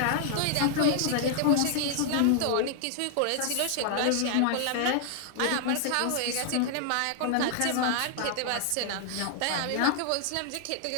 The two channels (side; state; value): both; different; correlation -0.01